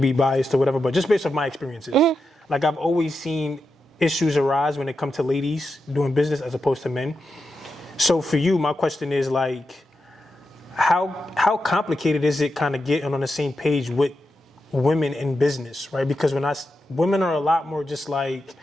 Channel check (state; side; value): normal; both; correlation 0.88